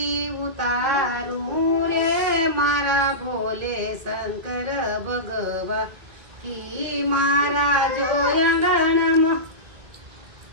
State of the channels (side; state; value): left; late; 1.9 ms